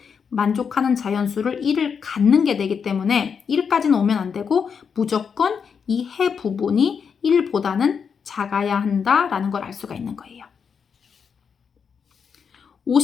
만족하는 자연수를 1을 갖는 게 되기 때문에 1까지는 오면 안 되고 무조건 이 해 부분이 1보다는 작아야 한다라는 걸 알 수가 있는 거예요.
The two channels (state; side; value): quieter; right; 6.5 dB